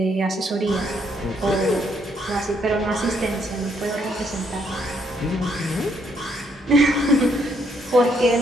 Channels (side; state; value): both; normal; correlation 0.72